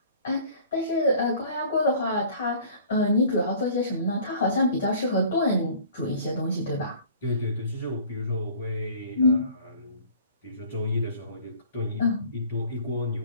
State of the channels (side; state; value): both; inverted; correlation -0.49